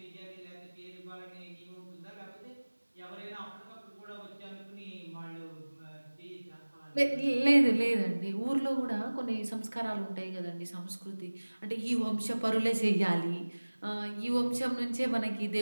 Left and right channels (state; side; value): inverted; both; correlation -1.00